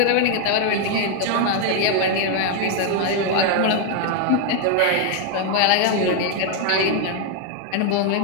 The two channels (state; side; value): different; both; correlation 0.00